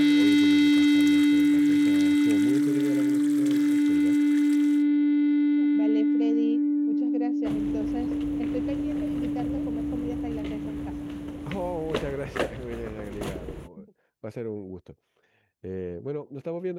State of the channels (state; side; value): identical; both; correlation 1.00